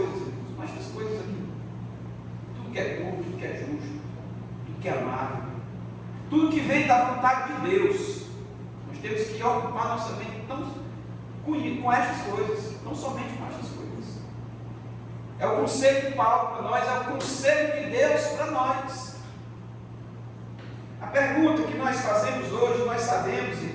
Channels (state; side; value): identical; both; correlation 1.00